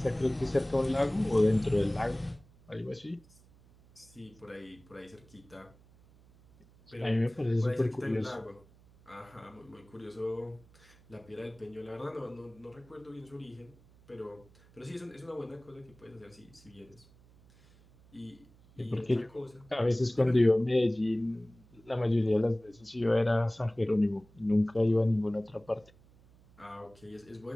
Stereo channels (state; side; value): noise; right; hum, 27 dB below the sound